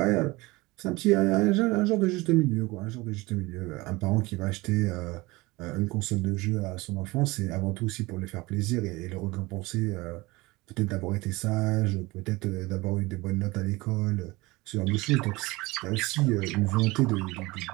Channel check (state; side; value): quieter; left; 22.2 dB